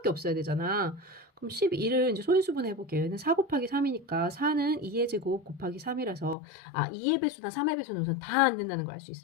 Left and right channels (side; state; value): right; drops out; at 6.4 s